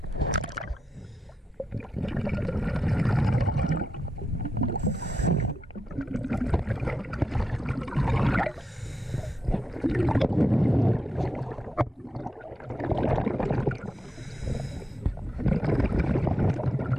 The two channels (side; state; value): both; normal; correlation 0.87